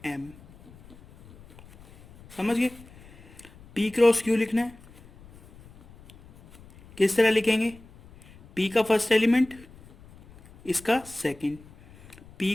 M. समझ गए? P क्रॉस Q लिखना है। किस तरह लिखेंगे? P का फर्स्ट एलिमेंट, इसका सेकंड, P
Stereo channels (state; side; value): noise; left; rumble, 23 dB below the sound